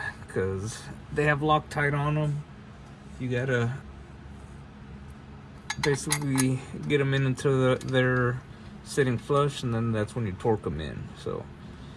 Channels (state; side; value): identical; both; correlation 1.00